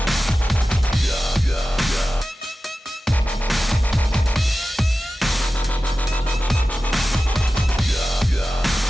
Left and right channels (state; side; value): normal; both; correlation 0.94